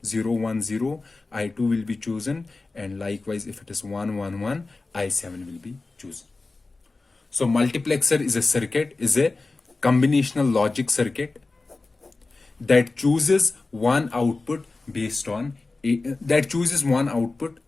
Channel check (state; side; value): quieter; right; 3.5 dB